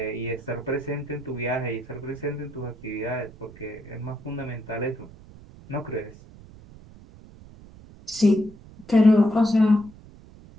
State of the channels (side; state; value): right; noise; rumble, 20 dB below the sound